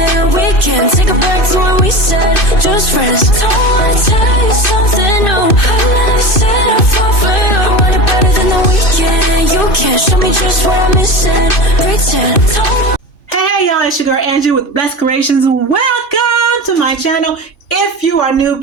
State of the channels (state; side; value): late; right; 2.5 ms